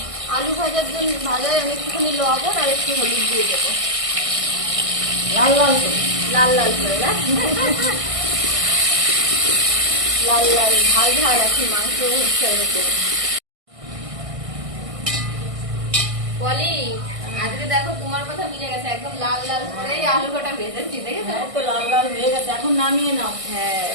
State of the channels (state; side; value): late; left; 1.6 ms